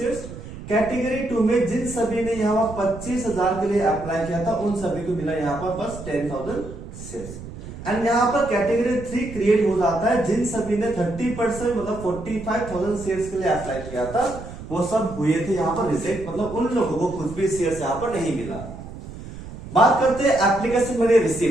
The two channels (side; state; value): right; noise; rumble, 13 dB below the sound